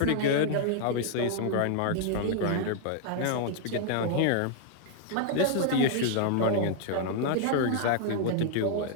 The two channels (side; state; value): both; different; correlation 0.00